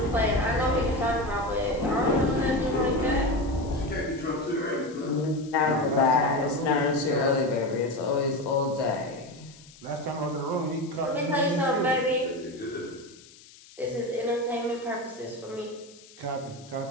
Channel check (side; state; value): left; noise; hiss, 22 dB below the sound